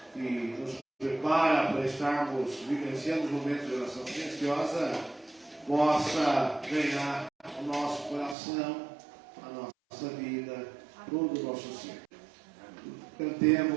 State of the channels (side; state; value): left; drops out; at 8.3 s